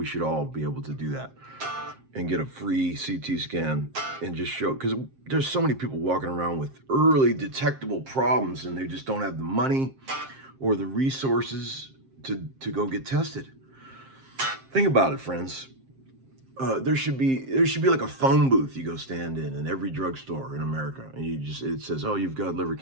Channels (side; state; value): left; late; 7.6 ms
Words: should all be able to do that and get a free CT scan and just show, because there's so many people walking around with early detectable problems and they just don't have the money or the resources to go get tested. Think about it, friends. there should be like a phone booth you go stand in every drugstore in America, and it says, oh, you've got liver